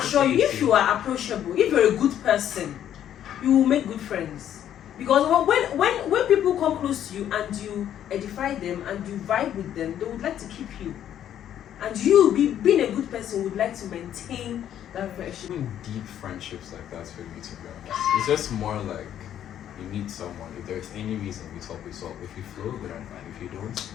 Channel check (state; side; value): quieter; right; 10.5 dB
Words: you, if you are approachable, if you're a good person, you will make good friends. Because when people come close to you and you edify them and you vibe with them, they would like to keep you. And you, being a good person, would like to maintain that friendship. Even deep friendships like that for me, to be honest. It's just more like you meet someone. If there's any reason we talk, we solve. If you flow, good and fine. If you don't,